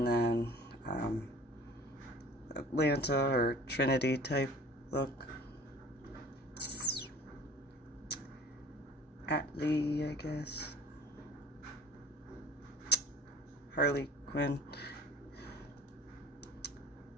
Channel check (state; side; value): normal; both; correlation 0.47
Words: then Atlanta or Trinity type look. Atlee, I guess. Harley Quinn.